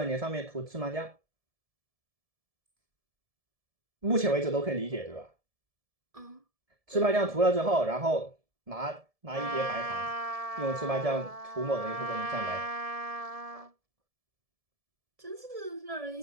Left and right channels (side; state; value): left; late; 1.7 ms